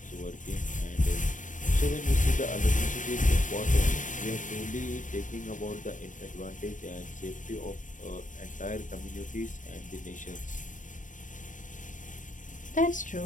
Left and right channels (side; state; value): right; late; 0.37 ms